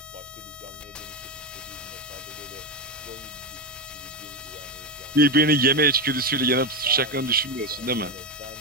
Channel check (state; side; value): normal; both; correlation 0.11